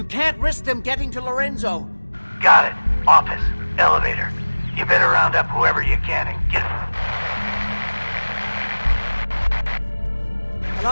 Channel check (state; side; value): inverted; both; correlation -1.00